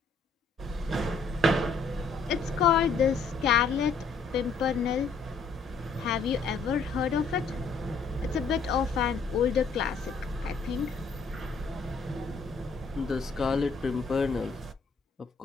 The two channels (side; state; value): right; quieter; 4.4 dB